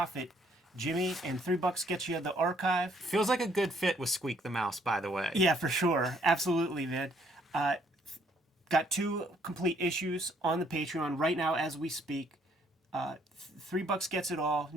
Jimmy, and $3 gets you the archive. Feels like a good fit with Squeak the Mouse, by the way. Yeah, for sure. Absolutely, man. Got 2 complete issues on the Patreon right now as we speak. $3 gets it all.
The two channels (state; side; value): normal; both; correlation 0.65